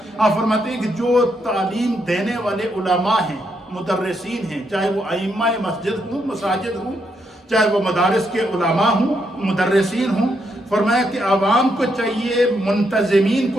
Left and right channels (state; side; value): normal; both; correlation 0.78